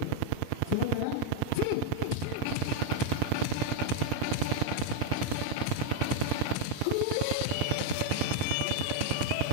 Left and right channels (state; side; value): different; both; correlation 0.00